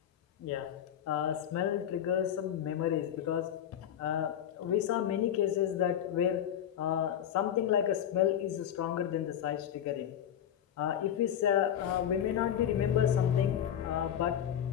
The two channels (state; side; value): quieter; right; 9.9 dB